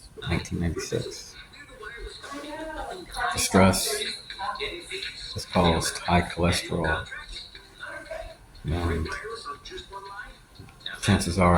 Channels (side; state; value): both; identical; correlation 1.00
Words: 1996. The stress has caused high cholesterol, and chances